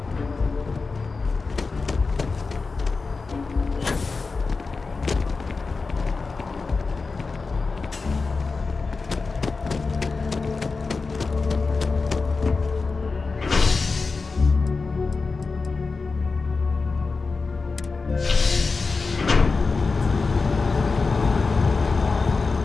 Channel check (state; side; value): quieter; right; 4.2 dB